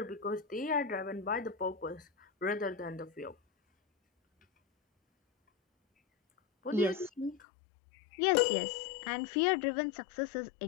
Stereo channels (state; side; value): drops out; right; at 7.4 s